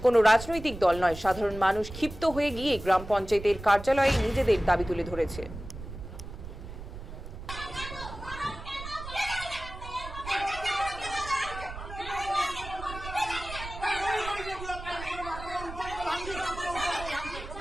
কোনো রাজনৈতিক দল নয়, সাধারণ মানুষ ক্ষিপ্ত হয়ে গিয়ে গ্রাম পঞ্চায়েতের কার্যালয়ে নিজেদের দাবি তুলে ধরেছে।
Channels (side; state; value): right; noise; rumble, 11 dB below the sound